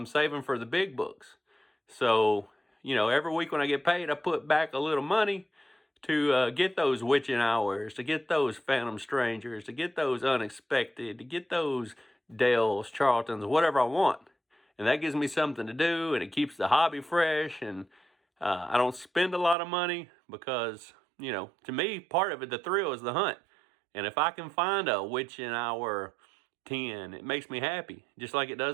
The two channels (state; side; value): drops out; left; at 19.6 s